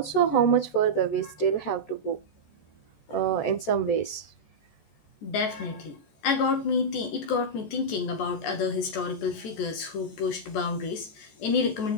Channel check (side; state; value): right; late; 14 ms